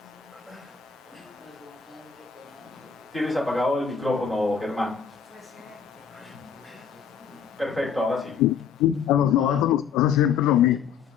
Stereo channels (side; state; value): right; quieter; 7.1 dB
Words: Tienes apagado el micrófono, Germán. Perfecto, ahora sí. A los novatos nos pasa siempre lo mismo.